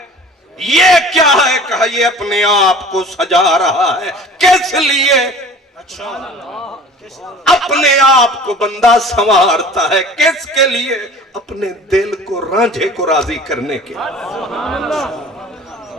یہ کیا ہے؟ کہا یہ اپنے آپ کو سجا رہا ہے۔ کس لیے؟ اپنے آپ کو بندہ سنوارتا ہے، کس کے لیے؟ اپنے دل کو، رانجھے کو راضی کرنے کے۔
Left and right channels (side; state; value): both; normal; correlation 0.43